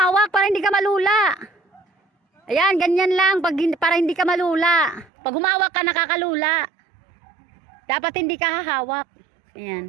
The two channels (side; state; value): left; drops out; at 5.1 s